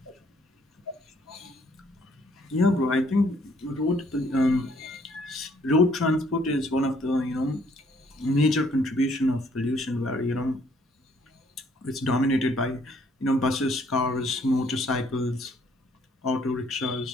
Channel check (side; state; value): both; normal; correlation 0.65